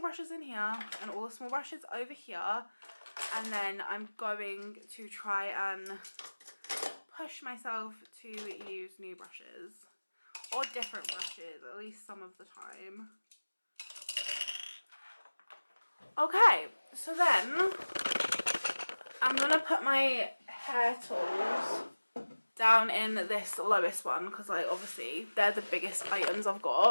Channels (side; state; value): both; inverted; correlation -1.00